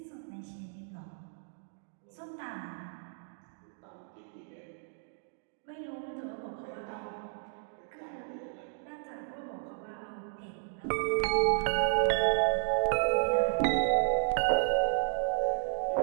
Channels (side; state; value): left; silent; digital silence